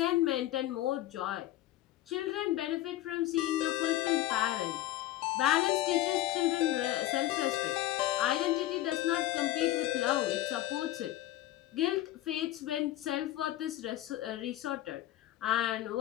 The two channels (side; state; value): right; quieter; 14.8 dB